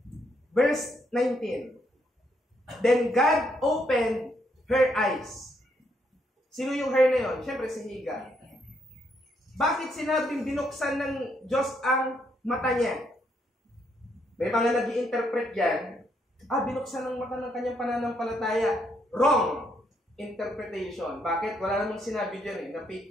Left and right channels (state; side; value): normal; both; correlation 0.74